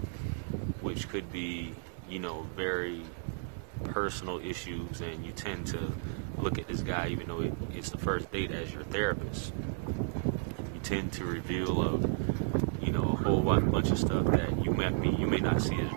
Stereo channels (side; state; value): left; silent; 56 dB below the other